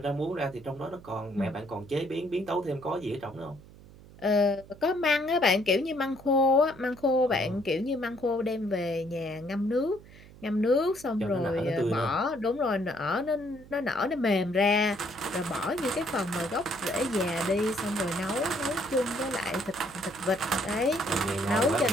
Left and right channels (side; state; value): right; noise; hum, 21 dB below the sound